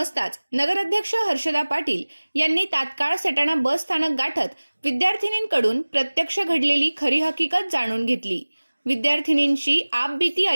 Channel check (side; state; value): both; inverted; correlation -1.00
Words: नगराध्यक्ष हर्षदा पाटील यांनी तात्काळ सटाणा बस स्थानक गाठत विद्यार्थिनींकडून प्रत्यक्ष घडलेली खरी हकीकत जाणून घेतली। विद्यार्थिनींची आपबीती